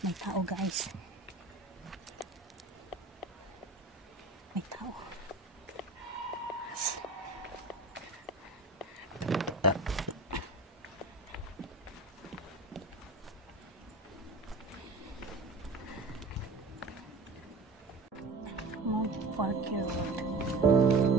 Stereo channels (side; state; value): left; quieter; 3.3 dB